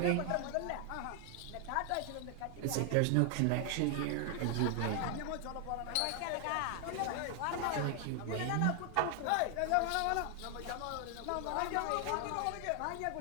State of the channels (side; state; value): both; different; correlation 0.00